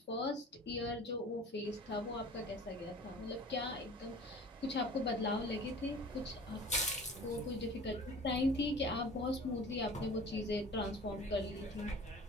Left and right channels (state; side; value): normal; both; correlation 0.43